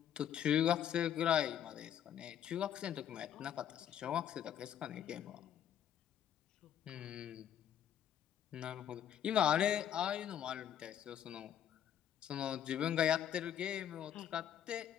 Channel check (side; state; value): right; quieter; 10.0 dB